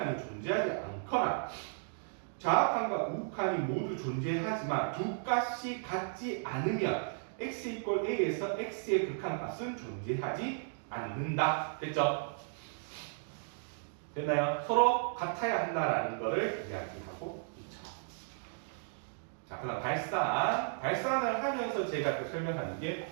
존재하지 않거나 자악한과 우극한이 모두 존재하지만 두 값이 같지 않으면 x 이퀄 a에서 x의 극한값은 존재하지 않는다. 됐죠? 됐나요? 서로 같아야 한다라는 것을 이야기하고 있죠. 자, 그 다음 발산을 하면서 제가 그 설명하는 게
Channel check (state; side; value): silent; left; digital silence